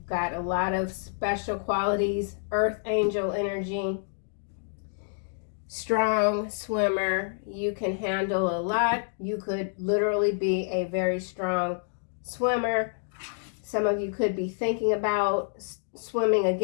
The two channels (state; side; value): silent; right; digital silence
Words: got a lot of special qualities, earth angel energy, strong swimmer. You can handle a lot. You could literally be a very strong swimmer. Some of you could be thinking about swimming